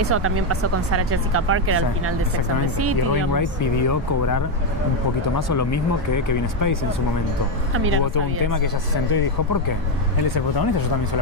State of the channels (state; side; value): normal; both; correlation 0.06